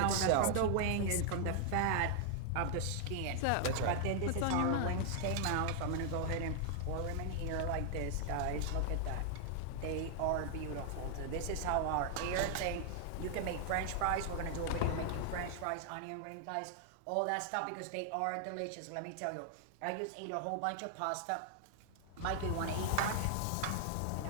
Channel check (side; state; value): both; different; correlation 0.00